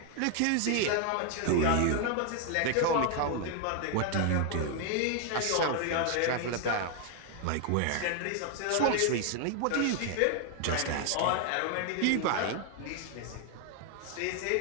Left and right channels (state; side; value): different; both; correlation 0.00